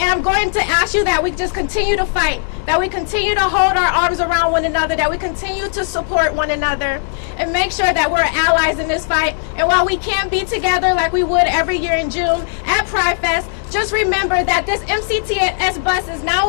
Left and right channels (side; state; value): right; silent; 68 dB below the other